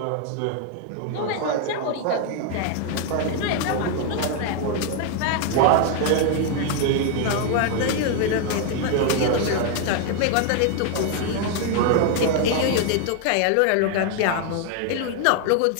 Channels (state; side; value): different; both; correlation 0.00